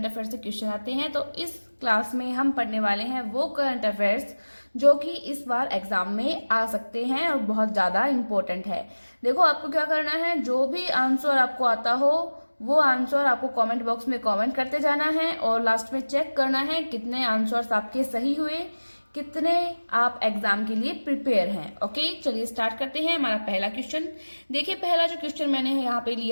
अफेयर्स से क्वेश्चन आते हैं। तो इस क्लास में हम पढ़ने वाले हैं वो करंट अफेयर्स जो कि इस बार एग्जाम में आ सकते हैं और बहुत ज़्यादा इम्पोर्टेंट है। देखो, आपको क्या करना है, जो भी आंसर आपको आता हो वो आंसर आपको कमेंट बॉक्स में कमेंट करते जाना है और लास्ट में चेक करना है कितने आंसर्स आपके सही हुए, कितने आप एग्जाम के लिए प्रिपेयर हैं। ओके, चलिए स्टार्ट करते हैं। हमारा पहला क्वेश्चन देखिए, पहला जो क्वेश्चन मैंने यहाँ पे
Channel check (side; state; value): both; inverted; correlation -1.00